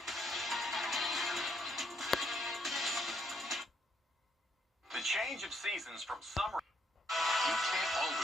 The change of seasons from summer. You can't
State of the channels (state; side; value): normal; both; correlation 0.72